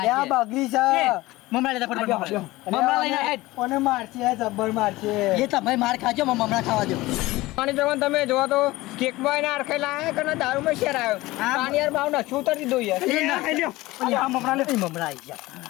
બગડી છે મમરા લેતા ફટાફટ મમરા લઈને હેડ કોને મારશે જબ્બર મારશે એ તમે માર ખાજો મમરા ખાવા દો માની જવાન તમે જોવા તો કેક માં એને અરખાઈ લાયા કે દારૂ માં શેર આવ્યો પાણી યાર ભાવ ના શું ઉતરી દો યાર મમરા લે મમરા આવી ગયા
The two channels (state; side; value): quieter; right; 19.2 dB